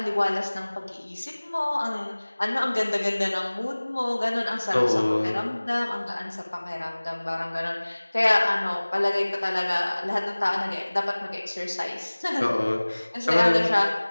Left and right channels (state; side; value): inverted; both; correlation -1.00